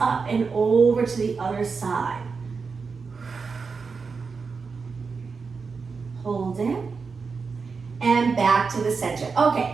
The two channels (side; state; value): left; quieter; 5.0 dB